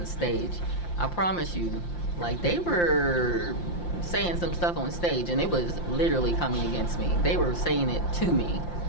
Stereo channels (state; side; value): late; right; 5.8 ms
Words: the stage. I promise you, like, they were saying some stuff on stage, and it was literally coming against me. They were saying it to me.